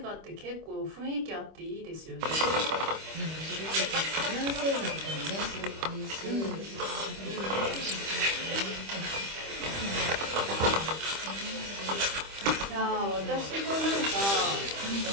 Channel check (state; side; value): late; left; 25 ms